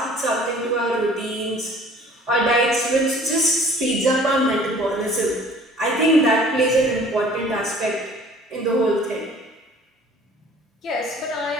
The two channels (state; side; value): normal; both; correlation 0.51